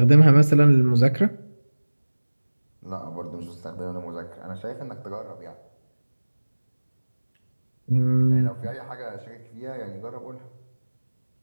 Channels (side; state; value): both; inverted; correlation -1.00